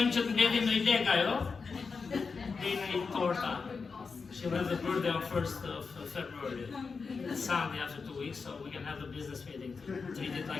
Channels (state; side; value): quieter; right; 4.9 dB